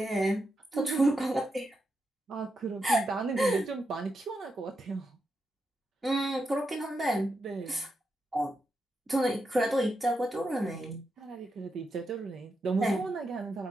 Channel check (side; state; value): both; normal; correlation 0.85